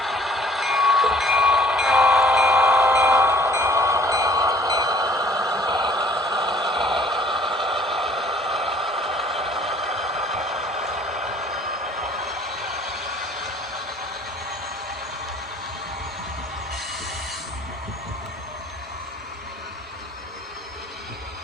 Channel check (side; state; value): both; normal; correlation 0.56